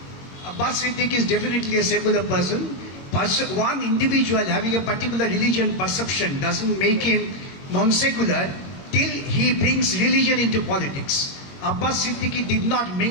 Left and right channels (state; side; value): late; right; 21 ms